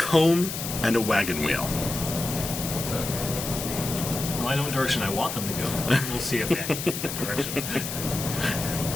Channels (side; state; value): left; noise; hiss, 6 dB below the sound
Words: and a wagon wheel. Well, I know what direction I want them to go. We'll see if they actually get that direction.